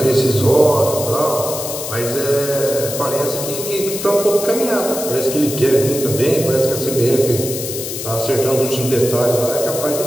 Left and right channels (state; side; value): noise; left; hiss, 7 dB below the sound